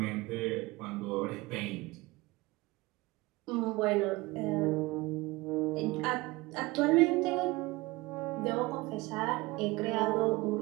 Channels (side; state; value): left; quieter; 21.6 dB